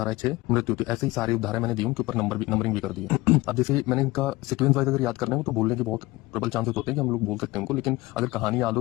6 मृत्यु होती है। ऐसे ही सारी उपधाराएं मैंने दी, उनके ऊपर नंबरिंग भी कर दी है। अब जैसे मैंने इनका सीक्वेंस वाइज अगर याद करना है तो बोलने के बहुत प्रबल चांसेस होते हैं कि हम लोग बोल सकते हैं उनको, लेकिन अगर कहानी याद हो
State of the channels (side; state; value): right; quieter; 20.2 dB